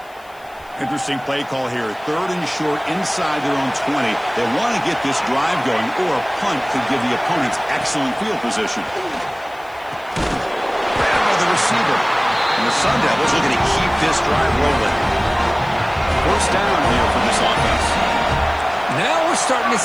Interesting play call here. 3rd and short inside their own 20. They want to get this drive going, or a punt could give the opponents excellent field position. Grabbed by the receiver. And the Sun Devils are going to keep this drive rolling. First down here for this offense. Now we're starting to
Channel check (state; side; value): noise; left; hiss, 28 dB below the sound